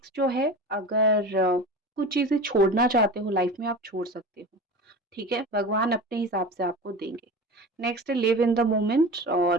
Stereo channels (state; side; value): normal; both; correlation 0.32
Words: जो है, अगर कुछ चीज़ें छोड़ना चाहते हो लाइफ में, आप छोड़ सकते हो, ठीक है? भगवान अपने हिसाब से आपको देंगे। Next live in the moment,